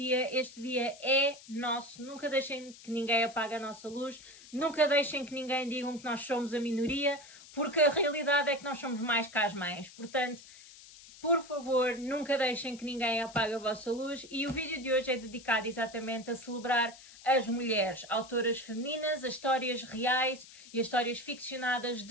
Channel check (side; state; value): left; noise; hiss, 19 dB below the sound